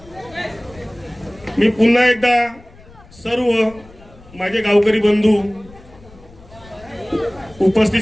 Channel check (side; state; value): left; noise; rumble, 23 dB below the sound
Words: मी पुन्हा एकदा सर्व माझे गावकरी बंधू, उपस्थित